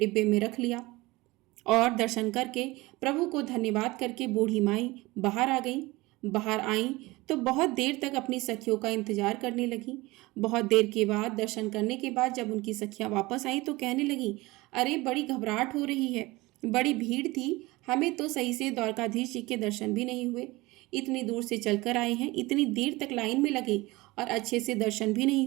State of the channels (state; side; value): quieter; left; 21.3 dB